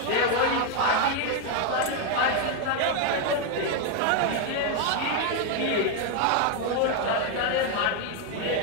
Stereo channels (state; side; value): different; both; correlation 0.01